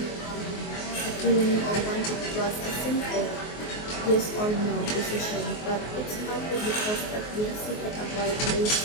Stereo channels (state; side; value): late; right; 24 ms